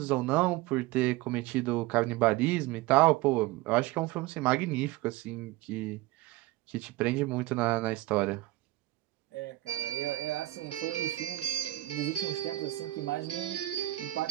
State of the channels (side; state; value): left; quieter; 17.6 dB